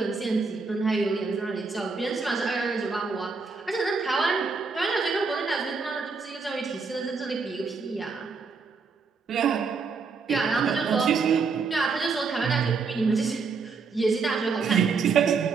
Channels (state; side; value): quieter; left; 4.8 dB